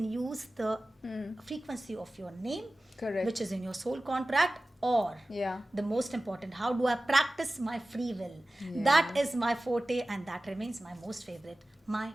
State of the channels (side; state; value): both; normal; correlation 0.96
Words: use the frequency of your name, Correct. which is in your soul contract, or Yeah. the most important, how do I practice my free will? That is my forte, and that remains my most favorite, my